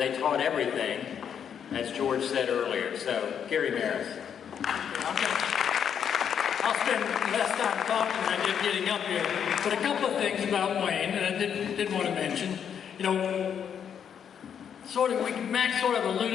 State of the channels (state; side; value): quieter; right; 8.1 dB